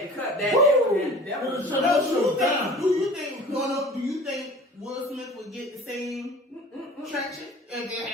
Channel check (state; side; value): normal; both; correlation 0.44